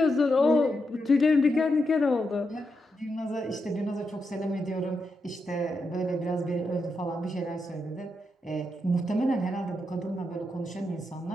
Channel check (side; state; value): both; normal; correlation 0.84